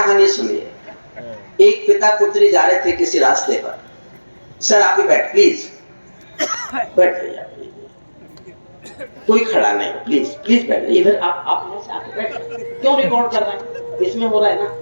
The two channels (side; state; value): both; inverted; correlation -1.00